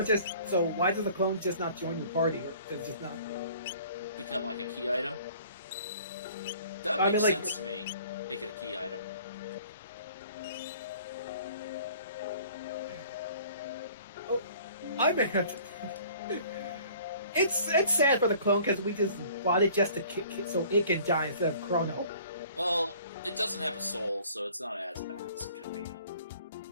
just... So why does the clone just not join your party? Or does it just not... become like a key item? That makes sense to me. Make it a key item. Oh, I mean... It's sad for the clone because we just bought it just to so it can die instead of Chrono. Well, it doesn't have a soul, so it's not as bad as it could be.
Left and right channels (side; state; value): both; inverted; correlation -0.51